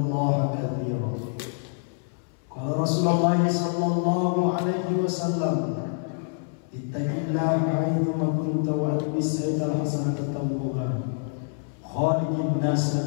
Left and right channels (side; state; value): right; silent; 61 dB below the other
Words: katsiran. Qala Rasulullah sallallahu alaihi wasallam, ittaqillaha haitsu kunta wa atbis sayyi'al hasanata tamhuha khaliqin